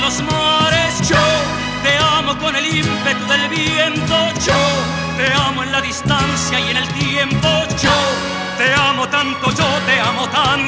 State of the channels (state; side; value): identical; both; correlation 1.00